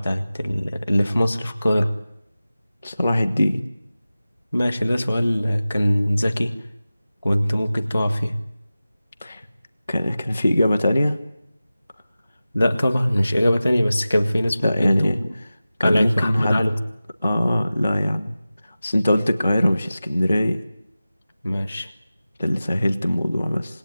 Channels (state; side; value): inverted; both; correlation -0.95